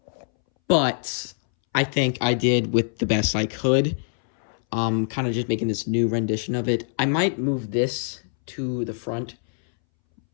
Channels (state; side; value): silent; right; 63 dB below the other